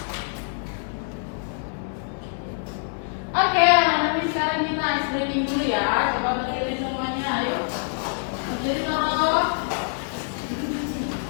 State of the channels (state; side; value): silent; right; 62 dB below the other